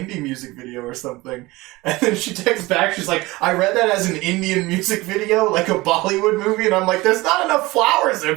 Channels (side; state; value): left; quieter; 20.8 dB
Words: music video or something. And then she texts back, she's like, I read that as an Indian music video, like a Bollywood movie, and I'm like, there's not enough flowers